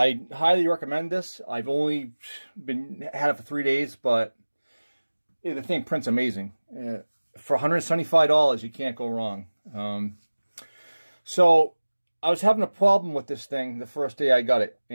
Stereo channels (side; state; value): both; inverted; correlation -1.00